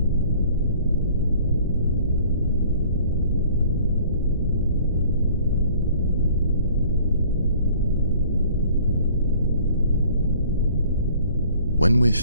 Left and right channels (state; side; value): inverted; both; correlation -0.54